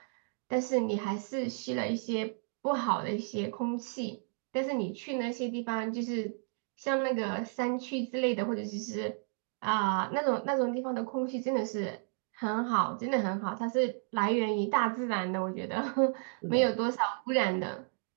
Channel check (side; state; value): left; silent; 55 dB below the other